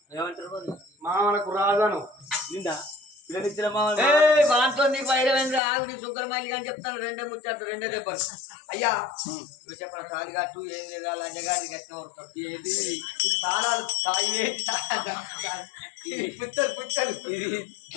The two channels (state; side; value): drops out; right; at 5.6 s